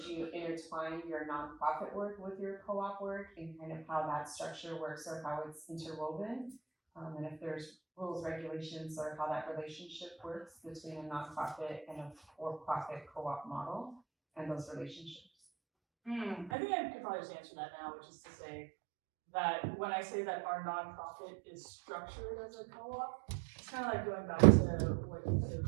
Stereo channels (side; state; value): left; drops out; at 16.5 s